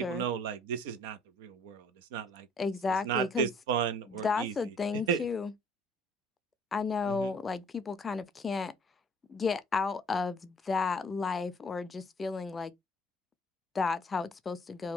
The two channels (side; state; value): both; normal; correlation 0.56